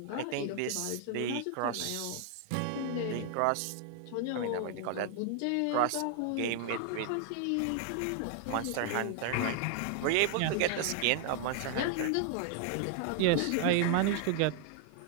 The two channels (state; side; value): different; both; correlation 0.00